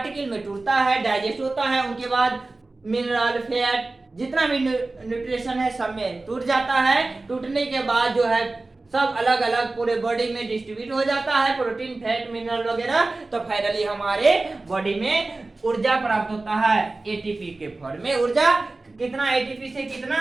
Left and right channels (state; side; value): quieter; left; 3.2 dB